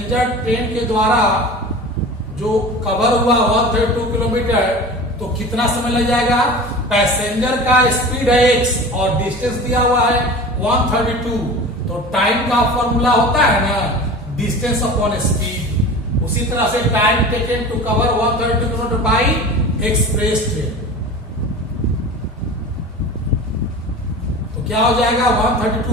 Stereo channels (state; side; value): normal; both; correlation 0.35